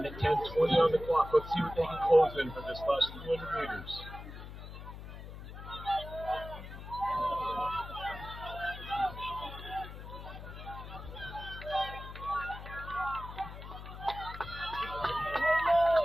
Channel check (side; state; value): left; noise; hum, 12 dB below the sound